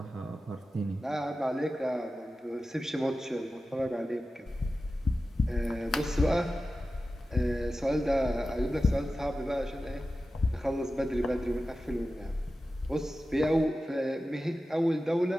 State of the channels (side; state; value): both; normal; correlation 0.94